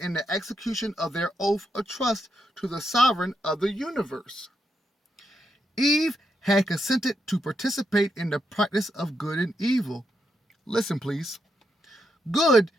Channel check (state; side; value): normal; both; correlation 0.81